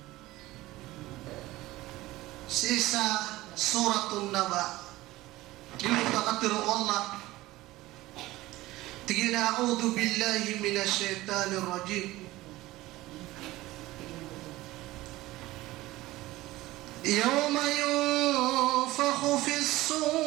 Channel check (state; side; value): quieter; left; 17.9 dB